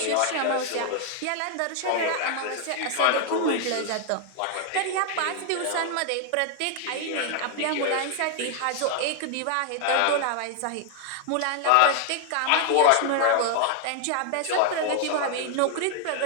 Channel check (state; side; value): different; both; correlation 0.00